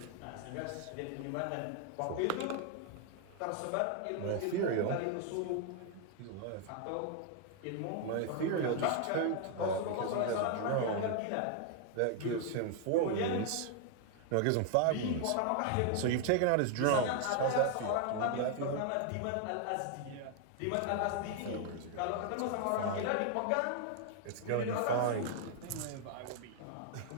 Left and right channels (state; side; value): different; both; correlation 0.00